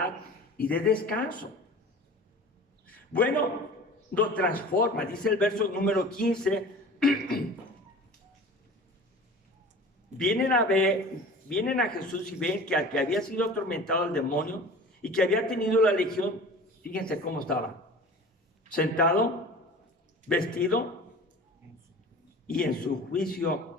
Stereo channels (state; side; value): normal; both; correlation 0.40